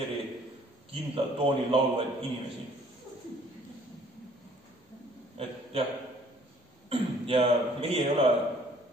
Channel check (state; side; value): normal; both; correlation 0.58